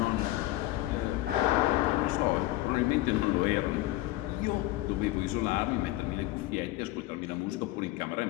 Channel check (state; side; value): quieter; right; 17.1 dB